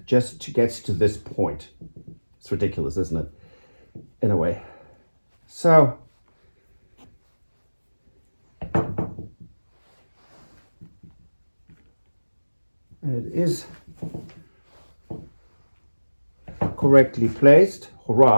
just to get to this point. It's ridiculous, isn't it? In a way. So and it is correctly placed.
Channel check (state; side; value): inverted; both; correlation -1.00